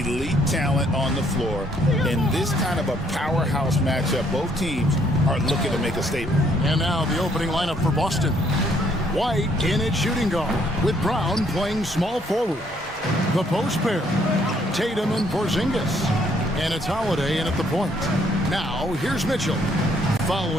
talent on the floor. In this kind of a powerhouse matchup, both teams are looking to make a statement. And now the opening lineup for Boston. White in at shooting guard, with Brown playing small forward. The post pair, Tatum and Porzingis. And it's Holiday in at the point. Now, here's Mitchell.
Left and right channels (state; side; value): normal; both; correlation 0.67